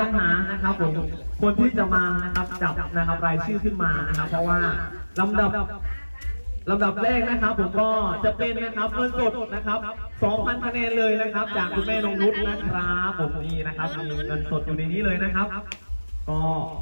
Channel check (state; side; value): inverted; both; correlation -1.00